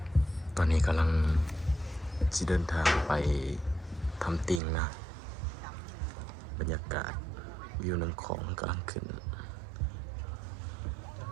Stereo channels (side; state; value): left; drops out; at 4.6 s